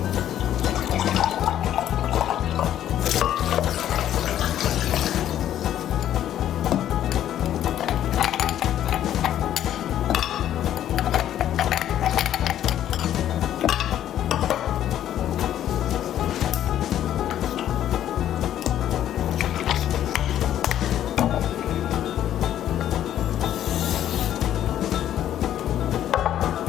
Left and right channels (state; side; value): quieter; right; 11.4 dB